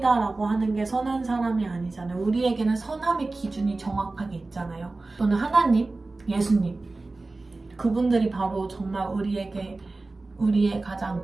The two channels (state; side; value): quieter; left; 3.3 dB